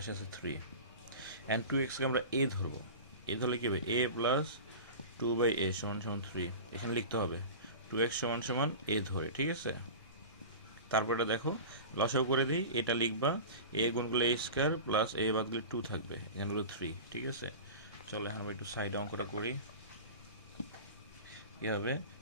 আছে 3 অ্যান্ড 2xকে আমরা a ধরবো। এ ধরলে কী হবে, a প্লাস 2/a সমান সমান 3। এখানে লিখতে হবে 2x সমান সমান a ধরে, ঠিক আছে। তারপর এটা দেখো লসাগু করে দিই, এটা লিখবা a গুণ করলে a স্কোয়ার প্লাস a বাদ দিলে 2 থাকবে, এখানে হলো 3, ঠিক আছে। চলো এখন আমরা একটু সাইডে অঙ্কটা করি। কী হবে,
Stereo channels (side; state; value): both; inverted; correlation -0.33